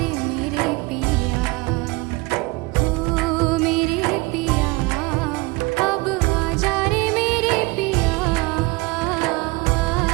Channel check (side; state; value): left; quieter; 24.3 dB